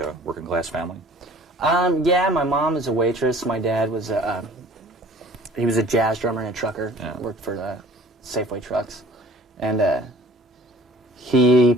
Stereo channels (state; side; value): normal; both; correlation 0.48